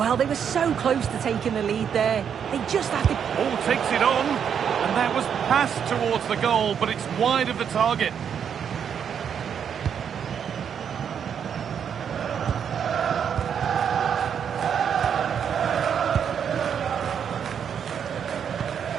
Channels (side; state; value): left; quieter; 7.9 dB